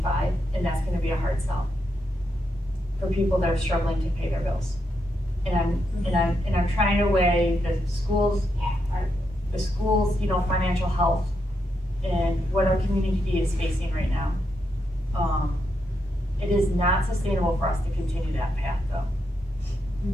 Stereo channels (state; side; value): normal; both; correlation 0.82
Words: and that's gonna be a hard sell for people that are struggling to pay their bills. And I'm trying to weigh the schools, you know, financial health and what our community is facing right now. It is not sustainable for us to continue that path, though.